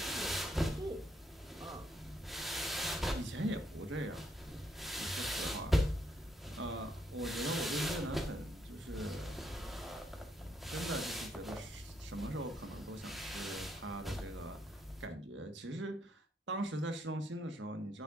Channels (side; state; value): both; normal; correlation 0.75